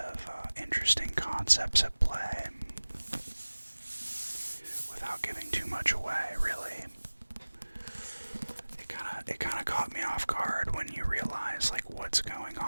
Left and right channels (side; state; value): both; inverted; correlation -1.00